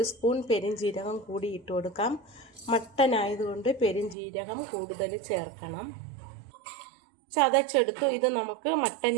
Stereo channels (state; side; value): drops out; left; at 4.2 s